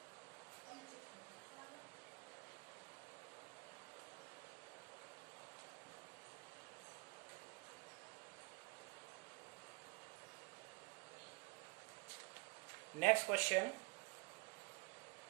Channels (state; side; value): quieter; left; 30.1 dB